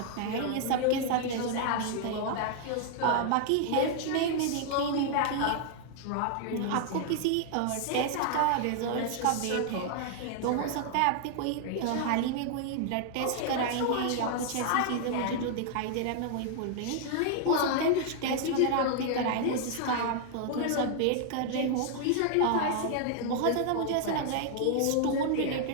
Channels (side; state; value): both; different; correlation 0.00